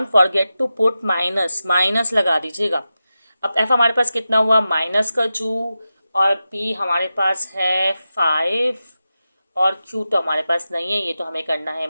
forget to put minus, minus लगा दीजिएगा। अब एफ हमारे पास कितना हुआ? -2, और पी हमारे पास है 5, और क्यू तो हमारे पास नहीं है, ये तो हमें करना है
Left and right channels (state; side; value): inverted; both; correlation -0.92